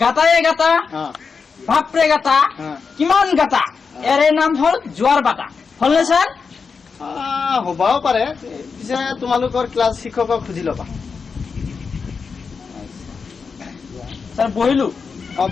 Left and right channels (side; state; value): right; quieter; 5.3 dB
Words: গাটায়ে গাটা বাপৰে গাটা কিমান গাটা এৰে নাম হল জোয়ার বাটা হলনে স্যার? হ'বও পাৰে পিছে তোমালোকৰ ক্লাছ শিক্ষকক সুধি ল'বা স্যার বহিলো